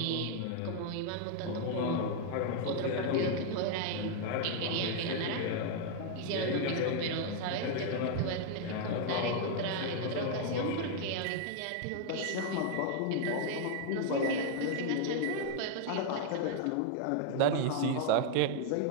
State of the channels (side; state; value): both; different; correlation 0.00